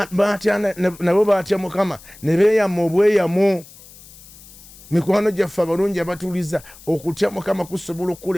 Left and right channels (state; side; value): noise; left; hiss, 21 dB below the sound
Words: nabo baatya Mukama ne beeyama obweyamo. Mikwano gyaffe abalungi abatuuliza, okutya Mukama kusobola